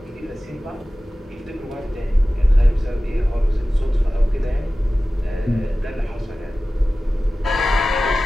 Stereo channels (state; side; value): normal; both; correlation 0.96